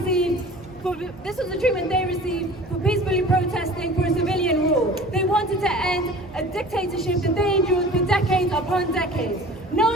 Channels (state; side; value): normal; both; correlation 0.42